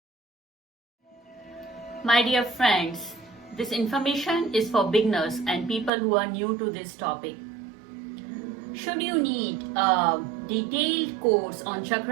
My dear friends, this information is for beginners and people who are new to this topic. Should you need a detailed course on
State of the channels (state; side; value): drops out; left; at 5.9 s